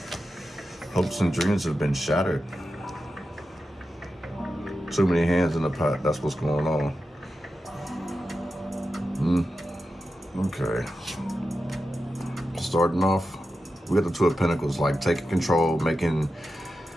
Hopes and dreams have been shattered. Too many hands in the pot, that's what's going on. Okay. Starting off, we got the 2 of Pentacles, like taking control, making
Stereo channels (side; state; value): both; normal; correlation 0.91